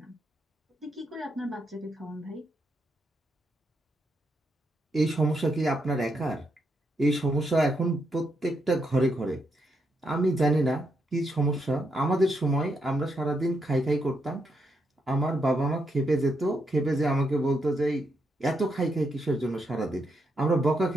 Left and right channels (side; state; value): both; normal; correlation 0.80